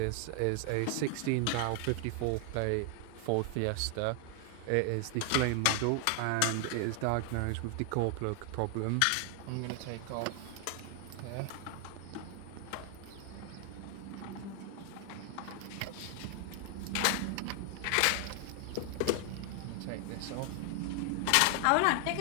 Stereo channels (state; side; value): different; both; correlation 0.00